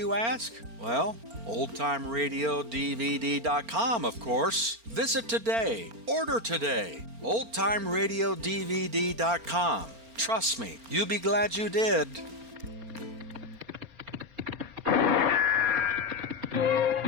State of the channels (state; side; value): late; left; 4.4 ms